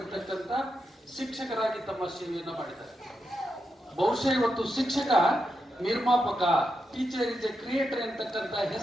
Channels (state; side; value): normal; both; correlation 0.86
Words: ಶಿಕ್ಷಕರಾಗಿ ತಮ್ಮ ಸೇವೆಯನ್ನ ಮಾಡಿದ್ದಾರೆ. ಬಹುಶಃ ಇವತ್ತು ಶಿಕ್ಷಕ ನಿರ್ಮಾಪಕ, ಟೀಚರ್ ಇಸ್ ಎ ಕ್ರಿಯೇಟರ್ ಅಂತಕ್ಕಂಥ